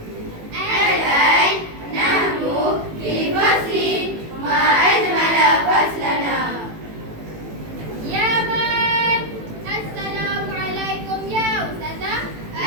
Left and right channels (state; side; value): late; left; 18 ms